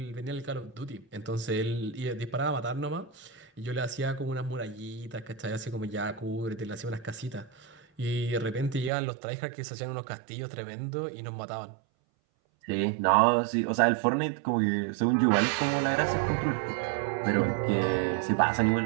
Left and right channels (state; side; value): drops out; left; at 8.9 s